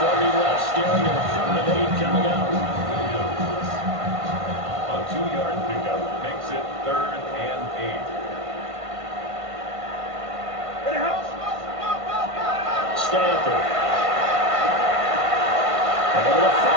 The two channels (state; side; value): late; left; 1.5 ms